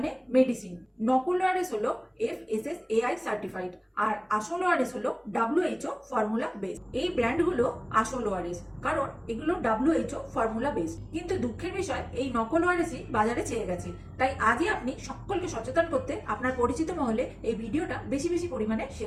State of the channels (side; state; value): both; identical; correlation 1.00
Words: মেডিসিন। নকল ওআরএস হলো FSSAI সার্টিফাইড, আর আসল ওআরএস হলো WHO ফর্মুলা বেস। এই ব্র্যান্ডগুলো আসল ওআরএস কারণ এগুলো WHO ফর্মুলা বেস। কিন্তু দুঃখের বিষয়, এই নকল ওআরএসই বাজারে ছেয়ে গেছে। তাই আজই আপনি সকলকে সচেতন করতে আপনার পরিচিত মহলে এই ভিডিওটা বেশি বেশি পরিমাণে